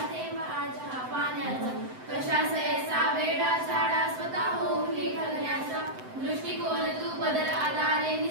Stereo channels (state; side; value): late; left; 7.8 ms